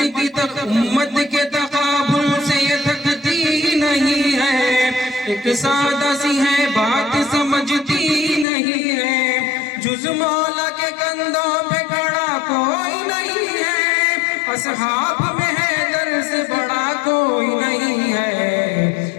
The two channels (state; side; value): drops out; right; at 8.5 s